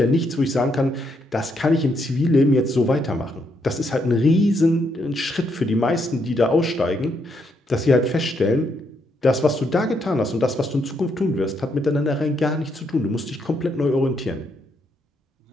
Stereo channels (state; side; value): normal; both; correlation 0.76